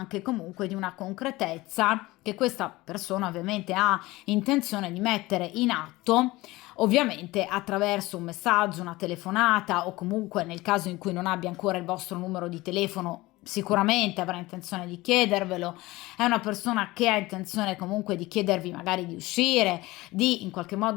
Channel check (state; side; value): quieter; right; 19.8 dB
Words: comunque di una concretezza che questa persona ovviamente ha intenzione di mettere in atto, ovviamente attraverso un messaggio, una telefonata o comunque nel caso in cui non abbia ancora il vostro numero di telefono sicuramente avrà intenzione di chiedervelo. È una persona che ha intenzione comunque di chiedervi magari di uscire, di in qualche